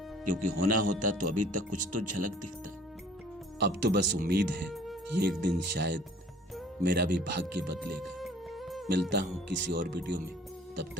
क्योंकि होना होता तो अभी तक कुछ तो झलक दिखता। अब तो बस उम्मीद है कि एक दिन शायद मेरा भी भाग्य बदलेगा। मिलता हूं किसी और वीडियो में, तब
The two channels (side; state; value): both; normal; correlation 0.53